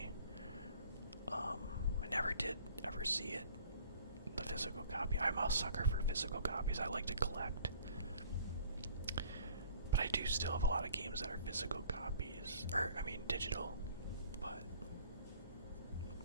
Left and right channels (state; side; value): inverted; both; correlation -0.52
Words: I never did ever see it, the physical copy. I'm a sucker for physical copies. I like to collect. But I do still have a lot of games that are physical copies, digital. But